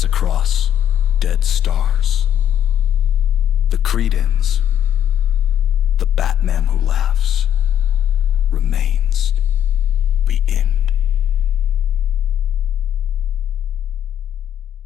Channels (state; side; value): quieter; right; 10.0 dB